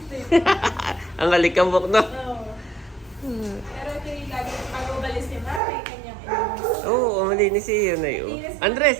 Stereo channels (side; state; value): left; drops out; at 5.6 s